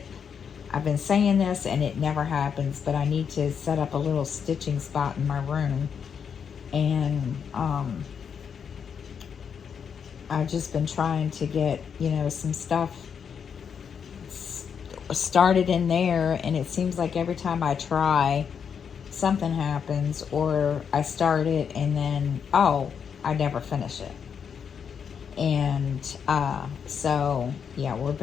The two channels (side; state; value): right; quieter; 7.1 dB